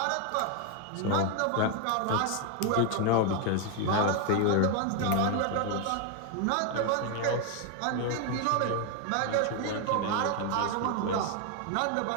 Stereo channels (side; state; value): both; different; correlation 0.01